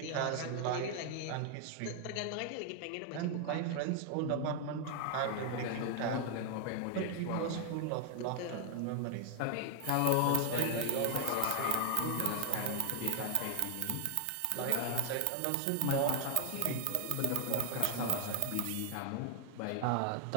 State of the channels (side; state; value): both; different; correlation 0.00